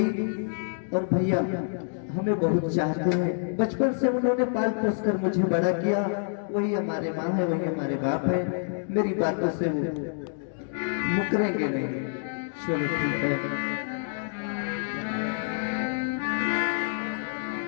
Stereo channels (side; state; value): right; silent; digital silence